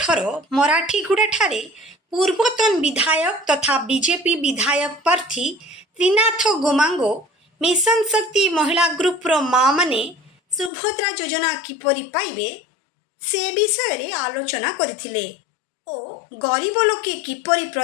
ମରାଠୀଗୁଡ଼ାଠାରେ ପୂର୍ବତନ ବିଧାୟକ ତଥା ବିଜେପି ବିଧାୟକ ପ୍ରାର୍ଥୀ ତ୍ରିନାଥ ଗୋମାଙ୍ଗୋ ମିଶନ ଶକ୍ତି ମହିଳା ଗ୍ରୁପର ମାଆମାନେ ସୁଭଦ୍ରା ଯୋଜନା କିପରି ପାଇବେ ସେ ବିଷୟରେ ଆଲୋଚନା କରିଥିଲେ ଓ ଗରିବ ଲୋକେ କିପରି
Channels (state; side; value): drops out; right; at 10.7 s